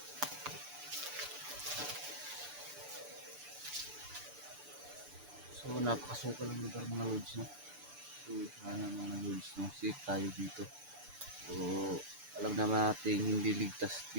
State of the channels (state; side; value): late; left; 6.9 ms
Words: So, napakasukal ng lugar mga lods, no? So, sana mga lods, no? Safe tayo dito. So, alam naman natin hindi ligtas